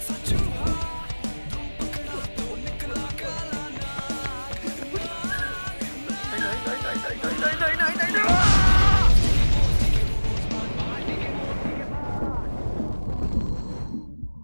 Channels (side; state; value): both; inverted; correlation -1.00